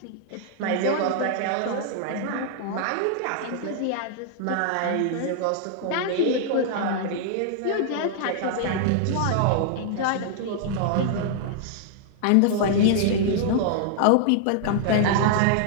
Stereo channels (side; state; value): both; different; correlation -0.01